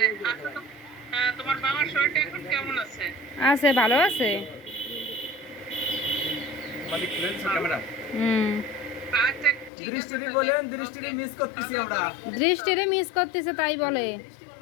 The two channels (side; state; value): right; drops out; at 9.7 s